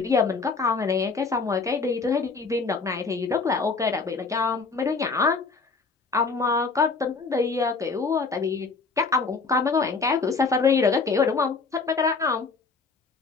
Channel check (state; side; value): quieter; right; 4.5 dB